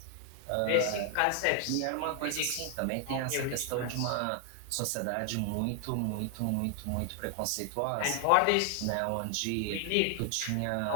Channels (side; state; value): both; different; correlation 0.00